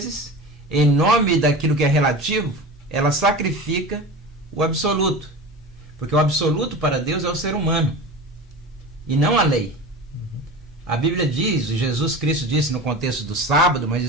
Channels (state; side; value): normal; both; correlation 0.31